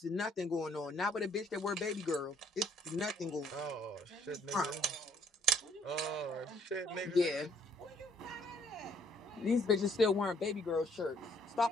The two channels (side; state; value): both; normal; correlation 0.64